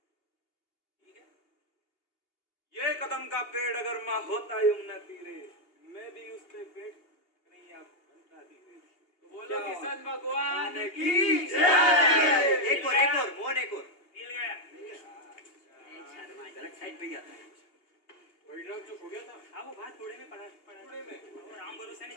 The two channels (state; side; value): late; right; 2.8 ms